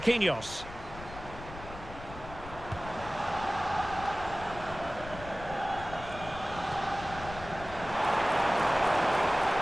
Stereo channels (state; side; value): noise; left; rumble, 13 dB below the sound